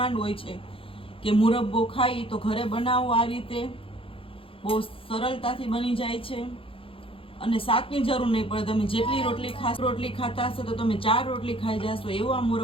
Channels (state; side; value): late; right; 0.26 ms